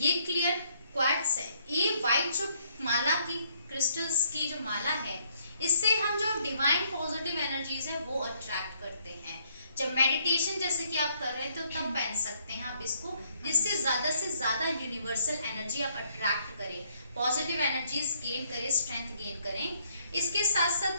क्लियर क्वार्ट्ज है। ये वाइट जो माला की क्रिस्टल्स की जो माला है, इससे हम जो डिवाइन पॉजिटिव एनर्जीज है वो अट्रैक्ट करते हैं। जब मेडिटेशन जैसे कि आप कर रहे हैं तो तब पहन सकते हैं आप इसको, जिससे से ज्यादा यूनिवर्सल एनर्जी आप अट्रैक्ट करें, पॉजिटिव एनर्जीज गेन करें, स्ट्रेंथ गेन करें। इसके साथ साथ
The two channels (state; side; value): inverted; both; correlation -0.69